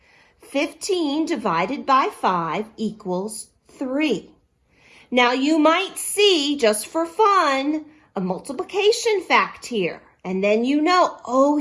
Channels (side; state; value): both; identical; correlation 1.00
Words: 15 divided by 5 equals 3. Now you might see, just for fun, a multiplication fact here. And then you know, oh